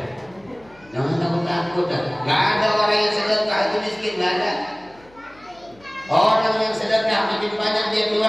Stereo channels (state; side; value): noise; left; hum, 28 dB below the sound